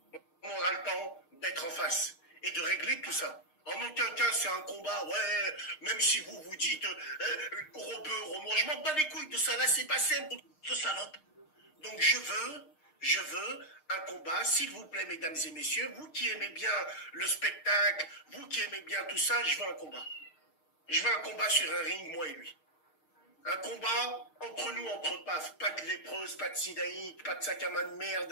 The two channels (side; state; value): right; late; 6.5 ms